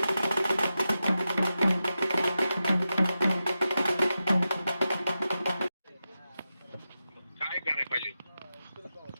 काय करायला पाहिजे?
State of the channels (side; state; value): both; inverted; correlation -0.92